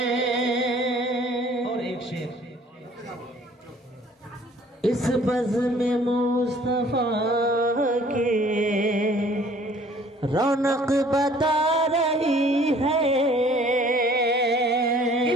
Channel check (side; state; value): both; normal; correlation 0.55